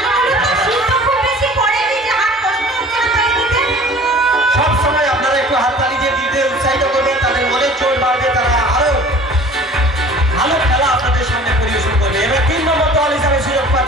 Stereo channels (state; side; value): normal; both; correlation 0.46